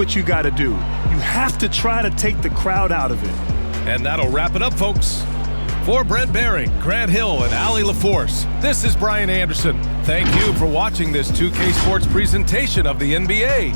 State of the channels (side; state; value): both; inverted; correlation -1.00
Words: you got to do. You have to try to take the crowd out of it. And that'll wrap it up, folks. For Brent Behring, Grant Hill, and Allie LaForce, this is Brian Anderson. Thank you for watching this 2K Sports presentation of the NBA.